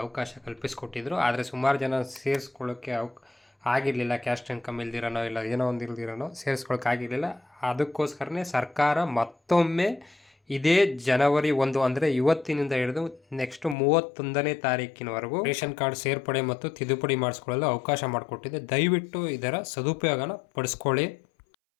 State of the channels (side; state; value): right; drops out; at 13.8 s